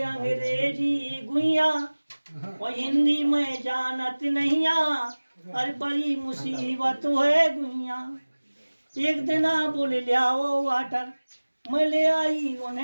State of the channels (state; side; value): inverted; both; correlation -1.00